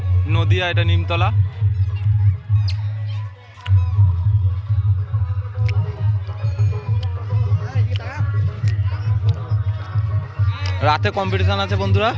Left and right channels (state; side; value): identical; both; correlation 1.00